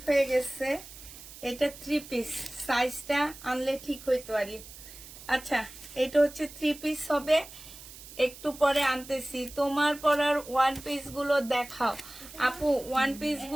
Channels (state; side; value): noise; right; hiss, 16 dB below the sound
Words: হয়ে গেছে। এটা 3 পিস, সাইজটা আনলে ঠিক হইতে পারি। আচ্ছা, এটা হচ্ছে 3 পিস হবে। একটু পরে আনতেছি। তোমার পরার ওয়ান পিস গুলো দেখাও আপু। ওয়ান পিস